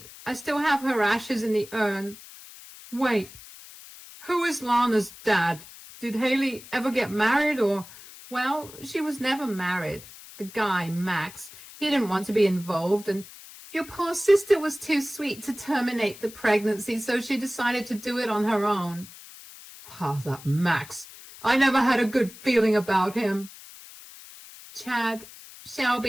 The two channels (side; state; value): left; noise; hiss, 18 dB below the sound